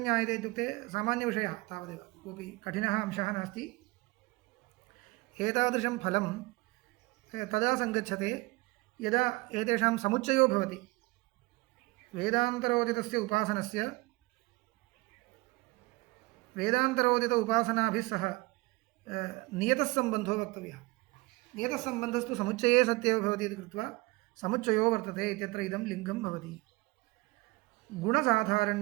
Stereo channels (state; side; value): quieter; left; 23.7 dB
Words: ज्ञायते इत्युक्ते सामान्यविषयः तावदेव, कोऽपि कठिनः अंशः नास्ति। एतादृशं फलं तदा सङ्गच्छते यदा एतेषां समुच्चयो भवति। वेदान्तरोदितस्य उपासनस्य वेदान्तरोदित उपासनाभिः सह नियतः सम्बन्धो वक्तव्यः। नियतः सम्बन्धस्तु समुच्चये सत्येव भवति इति कृत्वा समुच्चयो वर्तते इत्यत्र इदं लिङ्गं भवति।